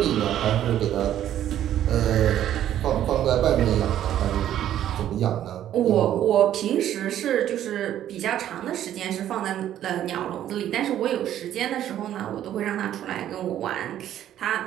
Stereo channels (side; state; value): left; quieter; 11.5 dB